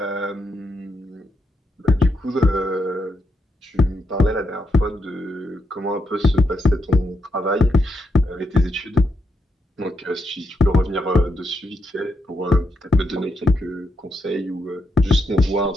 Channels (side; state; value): both; normal; correlation 0.82